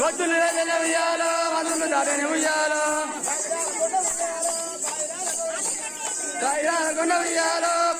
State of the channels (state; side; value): identical; both; correlation 1.00